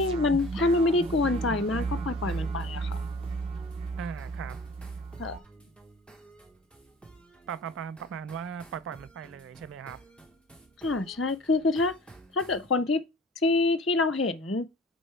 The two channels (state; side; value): normal; both; correlation 0.46